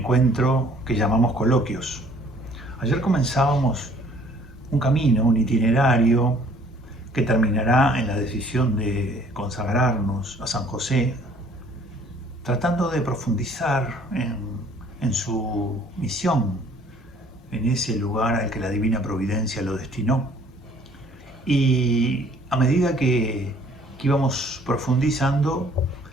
que llamamos coloquios. Ayer comenzábamos un camino, un itinerario que terminará en la decisión de consagrarnos a San José, tratando de profundizar en su misión, en ese lugar al que la Divina Providencia lo destinó. Y a medida que íbamos profundizando,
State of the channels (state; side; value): normal; both; correlation 0.58